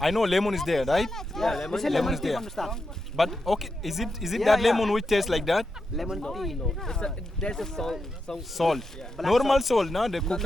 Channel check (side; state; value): both; normal; correlation 0.87